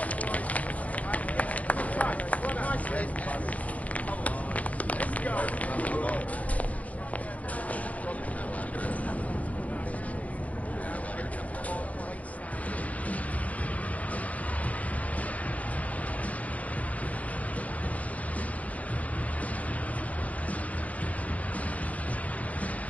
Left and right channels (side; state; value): right; late; 0.068 ms